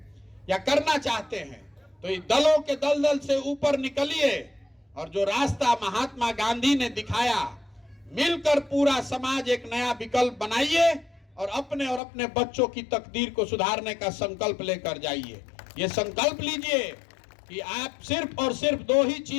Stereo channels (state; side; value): drops out; right; at 12.0 s